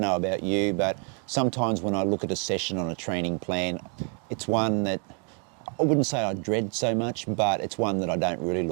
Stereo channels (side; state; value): left; quieter; 39.0 dB